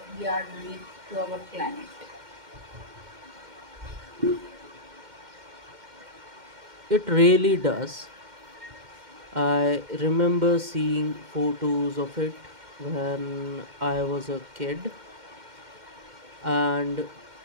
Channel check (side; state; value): left; late; 2.1 ms